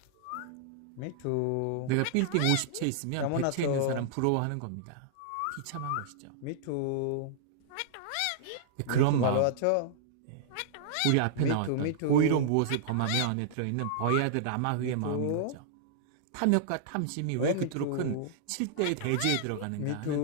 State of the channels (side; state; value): both; different; correlation -0.02